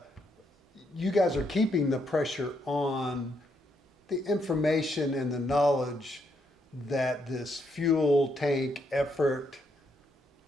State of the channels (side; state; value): both; normal; correlation 0.76